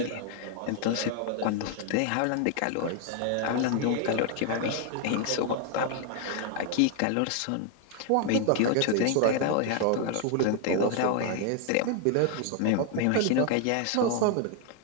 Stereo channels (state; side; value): different; both; correlation 0.00